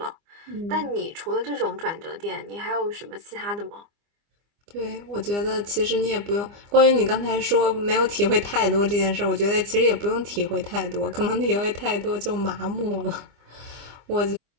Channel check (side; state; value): left; late; 25 ms